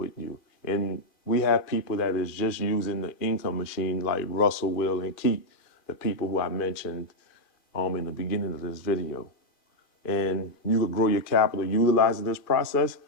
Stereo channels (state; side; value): late; right; 2.4 ms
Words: you. And we have people that is just using the income machine like Russell, Will, and Keith, the people who I mentioned in the beginning of this video. And you could grow your capital utilizing this process.